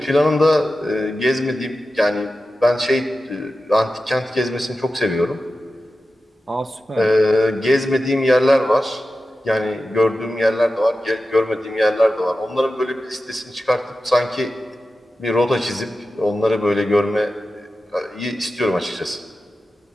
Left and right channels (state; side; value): normal; both; correlation 0.93